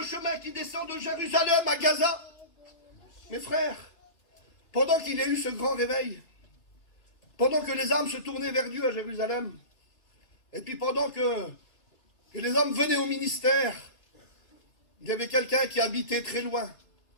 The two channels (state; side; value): late; right; 2.7 ms